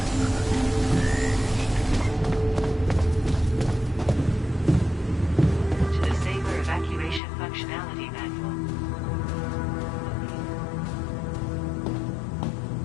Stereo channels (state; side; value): drops out; right; at 7.2 s